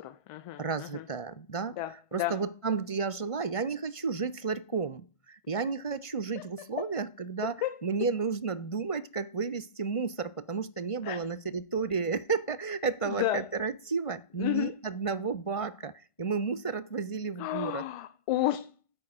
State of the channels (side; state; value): right; late; 1.5 ms